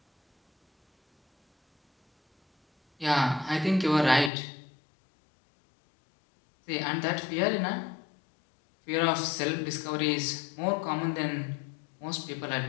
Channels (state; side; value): drops out; right; at 4.3 s